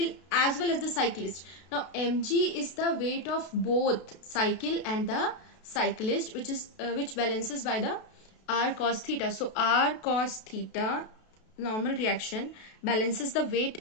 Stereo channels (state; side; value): late; right; 32 ms